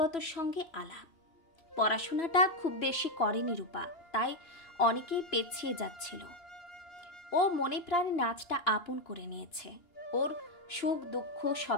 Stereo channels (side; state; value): right; late; 2.9 ms